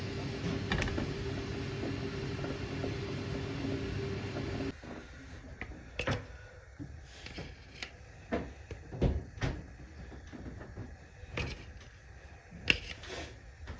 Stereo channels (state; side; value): identical; both; correlation 1.00